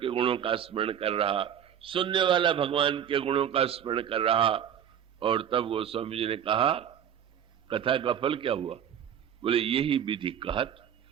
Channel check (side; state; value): left; quieter; 9.2 dB